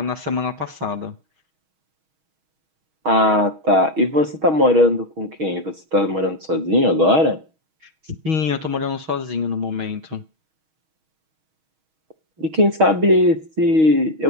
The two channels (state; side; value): late; left; 6.3 ms